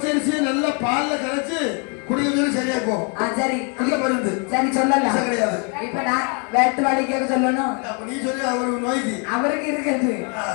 நல்லா பால்ல கரைச்சு குடிக்கிறது சரியா போகும். சரி நல்ல மருந்து. சரி சொல்லலாம். விஷம் கிடையாது. இப்ப நான் வேட்டு வாளி கேட்க சொல்லணும். அப்ப நீ சொல்லி அவருக்கு நோய்க்கு அவருக்கு இருக்குது.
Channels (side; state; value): right; quieter; 36.2 dB